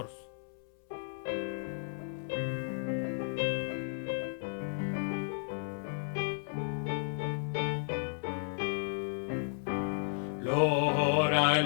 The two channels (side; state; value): right; silent; 55 dB below the other